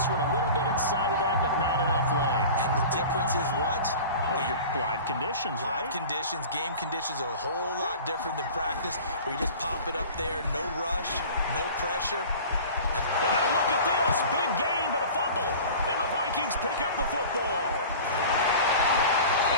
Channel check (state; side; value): inverted; both; correlation -0.39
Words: one a little bit inside of that, but not enough leg. And the difference is what? Well, your live conditions, right? Live conditions, game conditions are a whole lot different than practice, where you just pop it up there, no rush, no pressure. And now look at this. Big gain, but a fumble. And the Vikings pick up the football.